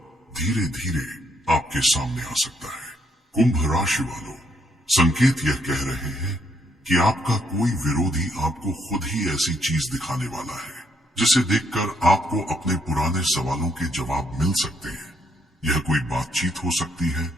धीरे धीरे आपके सामने आ सकता है। कुंभ राशि वालों, संकेत यह कह रहे हैं कि आपका कोई विरोधी आपको खुद ही ऐसी चीज दिखाने वाला है जिसे देखकर आपको अपने पुराने सवालों के जवाब मिल सकते हैं। यह कोई बातचीत हो सकती है,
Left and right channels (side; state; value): both; normal; correlation 0.72